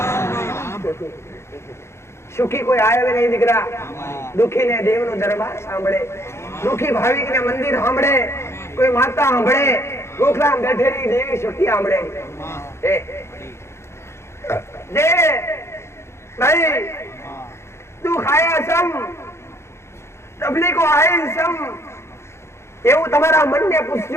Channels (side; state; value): right; late; 0.13 ms